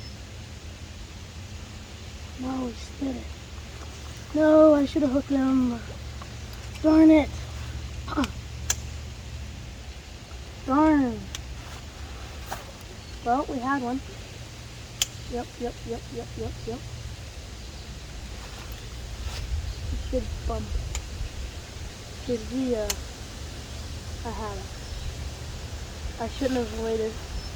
No, he spit it. No, I should have hooked him. Darn it. Darn. Well, we had one. Yep. He should bump. Because I had it. I shouldn't have waited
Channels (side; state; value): both; identical; correlation 1.00